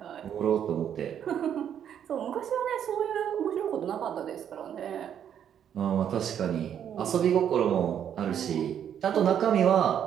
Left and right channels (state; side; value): quieter; left; 9.2 dB